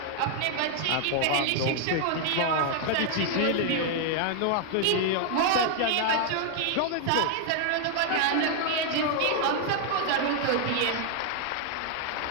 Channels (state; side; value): different; both; correlation 0.00